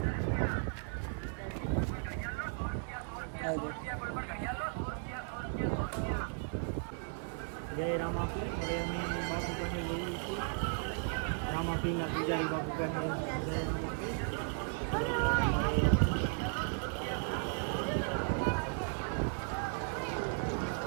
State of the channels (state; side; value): silent; left; 54 dB below the other